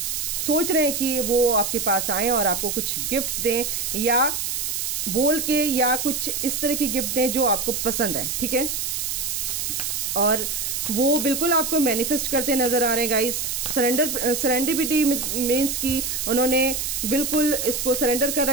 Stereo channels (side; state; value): right; noise; hiss, 2 dB below the sound